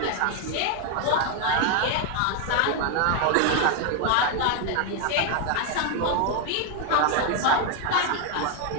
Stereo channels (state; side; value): different; both; correlation 0.01